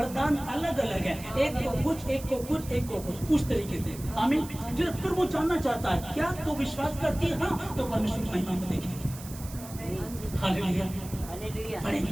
अलग अलग है, एक को कुछ, एक को कुछ, एक को कुछ, उस तरीके से। आमीन। फिर वो जानना चाहता है क्या तो विश्वास करती है? हाँ, तो परमेश्वर की महिमा को देखेंगे। हालेलुया,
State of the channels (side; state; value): right; noise; hiss, 15 dB below the sound